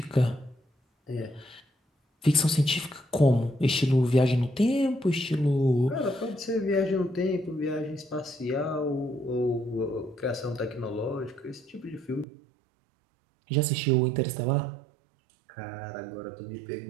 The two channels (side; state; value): left; drops out; at 12.2 s